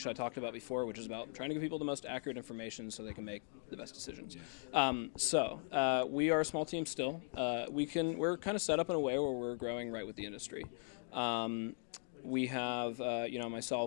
I talked about before, which is about trying to give people the most accurate information so they can make the best decisions. Yes. So we are a small team still. We're kind of set up in a way where we're growing right with the industry. We have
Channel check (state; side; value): silent; right; 51 dB below the other